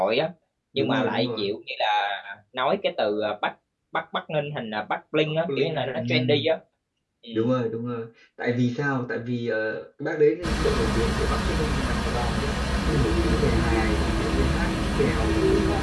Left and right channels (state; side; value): identical; both; correlation 1.00